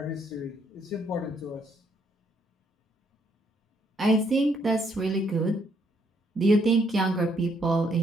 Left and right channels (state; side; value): normal; both; correlation 0.71